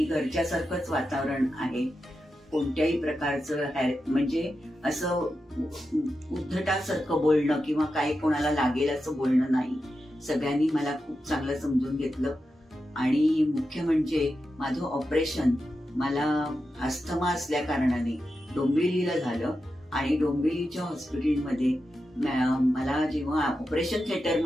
घरच्यासारखंच वातावरण आहे. कोणत्याही प्रकारचं म्हणजे असं उद्धटासारखं बोलणं किंवा काही कोणाला लागेल असं बोलणं नाही. सगळ्यांनी मला खूप चांगलं समजून घेतलं. आणि मुख्य म्हणजे माझं ऑपरेशन मला अस्थमा असल्या कारणाने डोंबिवलीला झालं आणि डोंबिवलीच्या हॉस्पिटलमध्ये मला जेव्हा ऑपरेशन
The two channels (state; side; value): normal; both; correlation 0.89